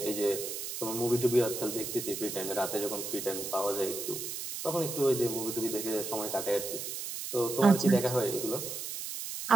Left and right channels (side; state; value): right; noise; hiss, 6 dB below the sound